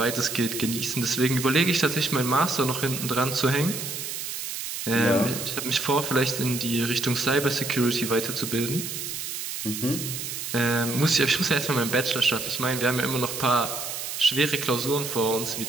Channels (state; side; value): noise; right; hiss, 6 dB below the sound